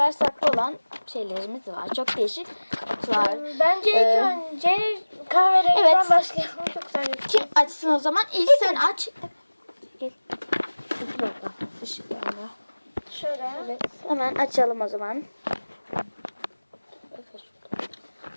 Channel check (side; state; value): both; inverted; correlation -1.00